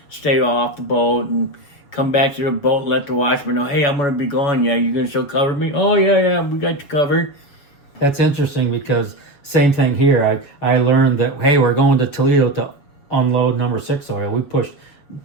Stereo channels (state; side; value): late; right; 7.0 ms